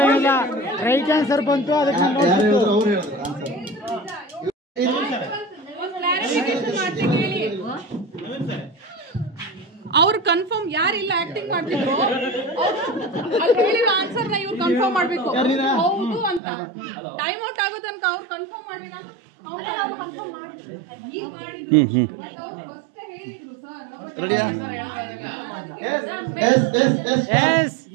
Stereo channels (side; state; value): left; drops out; at 16.4 s